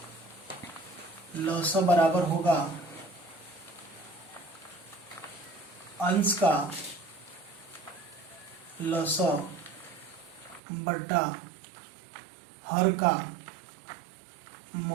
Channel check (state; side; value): drops out; left; at 10.6 s